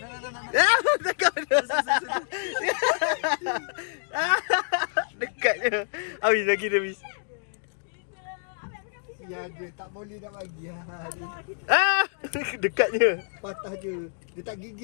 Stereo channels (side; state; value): right; silent; digital silence